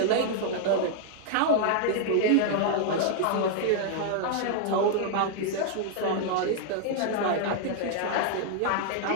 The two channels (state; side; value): different; both; correlation 0.00